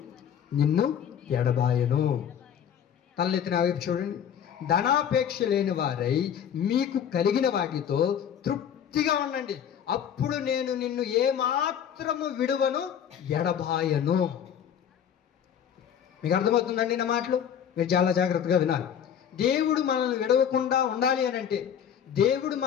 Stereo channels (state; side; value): quieter; right; 8.8 dB